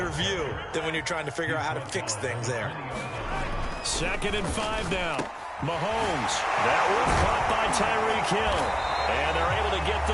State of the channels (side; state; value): both; identical; correlation 1.00